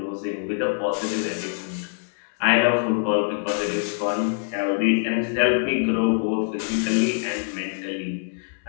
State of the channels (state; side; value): silent; right; 62 dB below the other